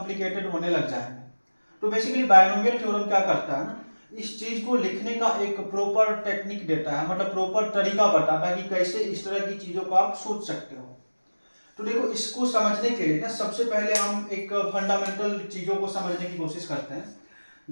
होने लग जाएंगे। तो बेसिकली बायनोमियल थ्योरम क्या करता है ना, इस चीज को लिखने का एक प्रॉपर टेक्निक देता है, मतलब प्रॉपर तरीका बताता है कि कैसे इस तरह की चीजों को आप सोच सकते हो। तो देखो, इसको समझने के लिए ना सबसे पहले हम एक फंडामेंटल चीजों को समझने की कोशिश करते हैं।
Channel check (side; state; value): both; inverted; correlation -1.00